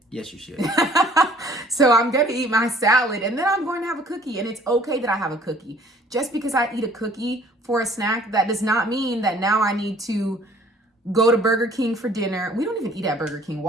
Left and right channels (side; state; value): both; normal; correlation 0.55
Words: Yes, you should. So I'm going to eat my salad, and then I'm going to have a cookie. And it's okay that I have a cookie. Just because I eat a cookie for a snack, that does not mean that now I need to go to Burger King for dinner. We don't even eat at Burger King.